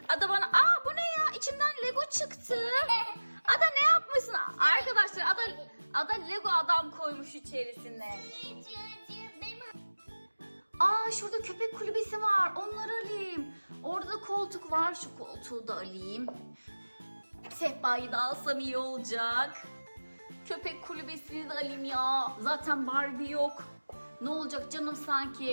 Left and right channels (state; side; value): inverted; both; correlation -1.00